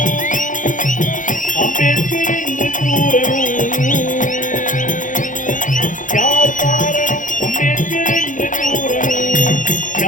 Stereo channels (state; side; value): late; right; 0.38 ms